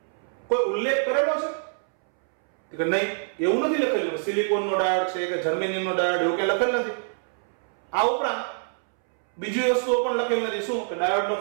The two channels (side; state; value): left; silent; 61 dB below the other